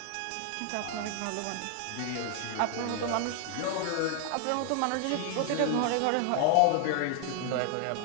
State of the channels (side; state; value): both; different; correlation 0.00